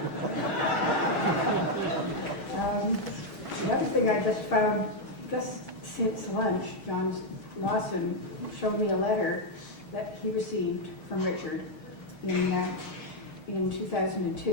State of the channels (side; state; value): right; late; 6.4 ms